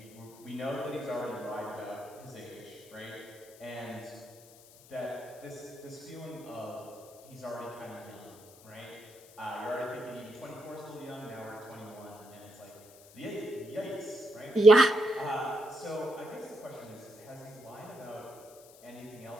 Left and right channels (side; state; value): left; noise; hiss, 22 dB below the sound